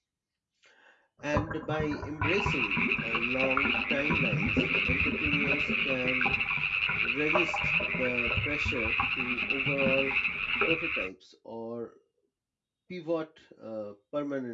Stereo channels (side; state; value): both; identical; correlation 1.00